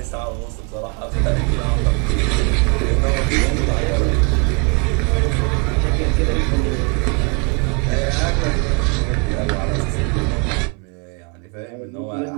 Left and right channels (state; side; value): quieter; left; 33.2 dB